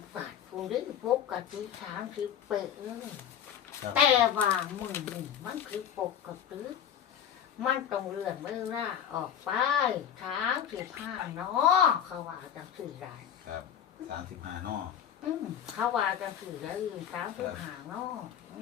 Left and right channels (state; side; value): quieter; right; 9.2 dB